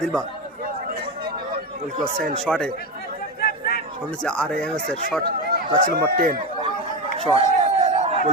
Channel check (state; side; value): normal; both; correlation 0.17